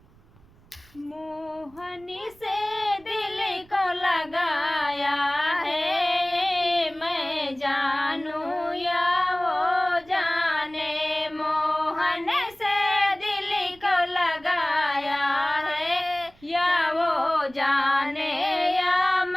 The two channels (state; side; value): noise; right; rumble, 27 dB below the sound